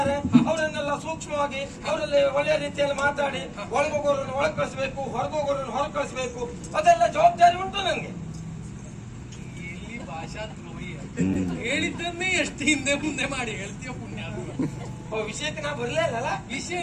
ಅವರನ್ನೆಲ್ಲ ಸೂಕ್ಷ್ಮವಾಗಿ ಅವರಲ್ಲಿ ಒಳ್ಳೆಯ ರೀತಿಯಲ್ಲಿ ಮಾತಾಡಿ ಒಳಗೋಗೋರನ್ನು ಒಳಗೆ ಕಳಿಸ್ಬೇಕು, ಹೊರಗೋಗೋರನ್ನು ಹೊರಗೆ ಕಳಿಸ್ಬೇಕು. ಅದೆಲ್ಲ ಜವಾಬ್ದಾರಿ ಉಂಟು ನನಗೆ. ಎಲ್ಲಿ ಭಾಷಾ ದ್ರೋಹಿ ಹೇಳಿದ್ದನ್ನೇ ಎಷ್ಟು ಹಿಂದೆ ಮುಂದೆ ಮಾಡಿ ಹೇಳ್ತೀಯ ಪುಣ್ಯ. ವಿಷಯಕ್ಕೆ ನಾ ಬರ್ಲೇ ಇಲ್ಲ. ವಿಷಯ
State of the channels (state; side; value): identical; both; correlation 1.00